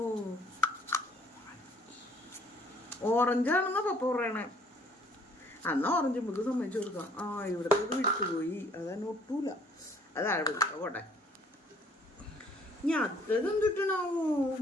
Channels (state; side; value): normal; both; correlation 0.59